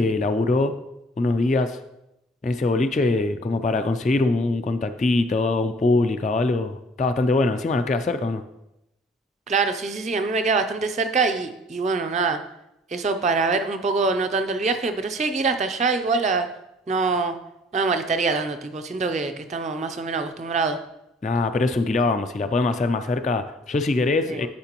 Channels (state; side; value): normal; both; correlation 0.53